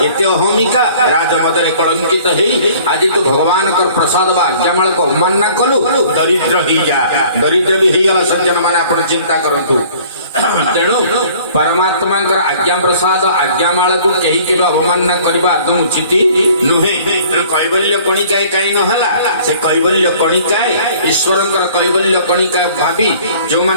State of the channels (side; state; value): both; inverted; correlation -0.52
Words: एते अहमिका राजमदरे कलंकित हेई आज तू भगवान का प्रसाद बा आज्ञामाल को अवमानना कलु दरिद्र ही जा दरिद्र भी ही गला सज्जन माने आपण चिंता करंतु तेणु परमात्मा आज्ञा प्रसाद आज्ञामाल को कहीं के अवमानना करबा आदम उचित नुहे कैवल्य कणिकाय कहीं नहला से कैवल्य कणिकाय ईश्वर कैवल्य कणिका भावी जो